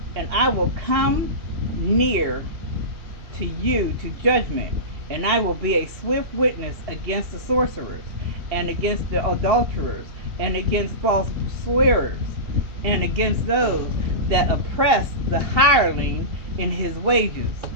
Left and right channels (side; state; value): left; late; 2.7 ms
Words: And I will come near to you to judgment, and I will be a swift witness against the sorcerers, and against the adulterers, and against false swearers, and against those that oppress the hireling in his wages,